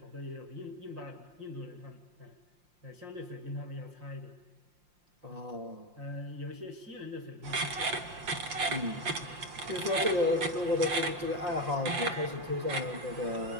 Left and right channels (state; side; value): late; left; 5.7 ms